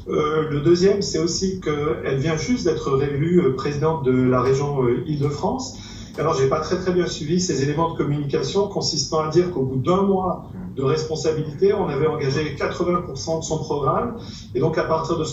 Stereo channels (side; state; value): both; identical; correlation 1.00